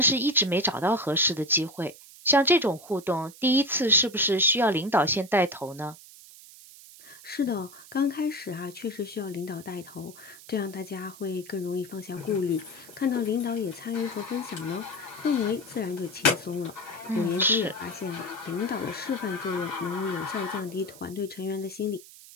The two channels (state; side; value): noise; right; hiss, 19 dB below the sound